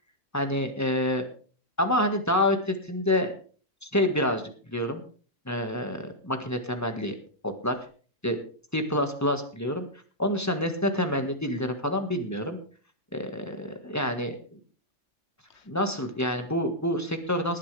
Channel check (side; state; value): both; normal; correlation -0.06